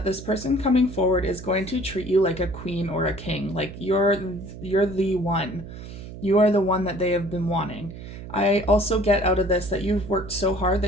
this person coming forward is going to treat you like a queen or a king. Like you're the one. You are the one that they have been wanting. I also get out of this that you've worked so hard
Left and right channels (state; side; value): noise; right; hum, 12 dB below the sound